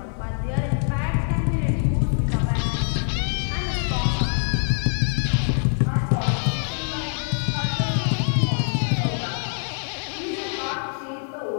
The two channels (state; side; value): silent; right; digital silence